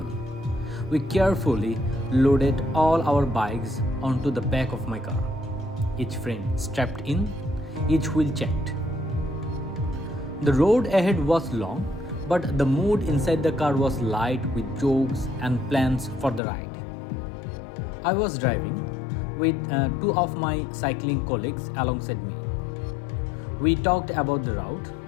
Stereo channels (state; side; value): drops out; right; at 16.4 s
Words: We carefully loaded all our bikes onto the back of my car, each frame strapped in, each wheel checked. The road ahead was long, but the mood inside the car was light with jokes and plans for the ride. I was driving with two of my cycling colleagues alongside me. We talked about the route,